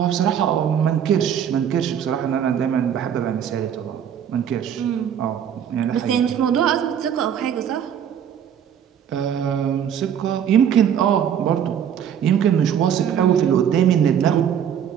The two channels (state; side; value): quieter; left; 8.8 dB